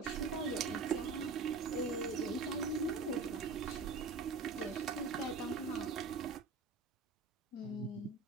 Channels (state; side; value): quieter; left; 4.2 dB